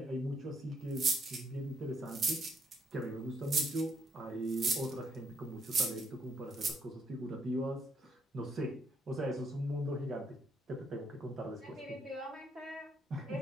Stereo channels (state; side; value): normal; both; correlation 0.72